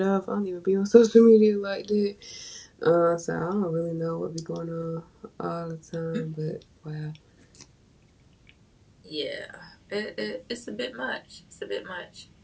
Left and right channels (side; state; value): both; identical; correlation 1.00